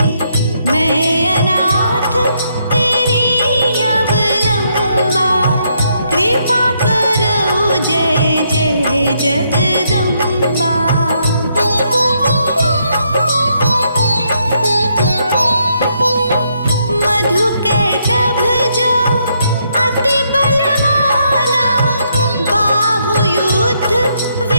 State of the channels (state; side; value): inverted; both; correlation -0.75